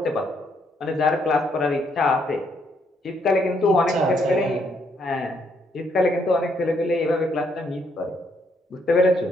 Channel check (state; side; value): normal; both; correlation 0.72